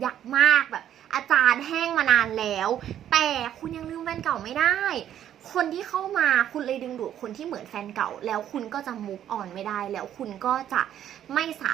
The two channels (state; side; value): quieter; left; 10.7 dB